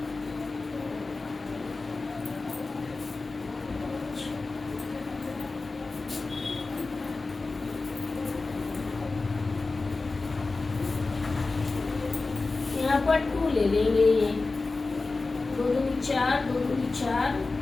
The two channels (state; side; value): quieter; right; 3.6 dB